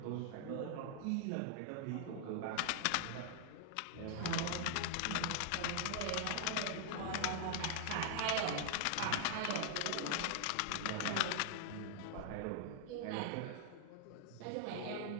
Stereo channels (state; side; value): different; both; correlation 0.00